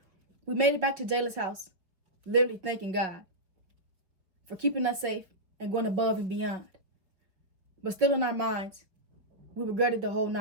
we made it back to Jayla's house, literally thanking God for keeping us safe and going above and beyond. But still in our minds, we regretted the whole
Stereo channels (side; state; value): left; late; 5.3 ms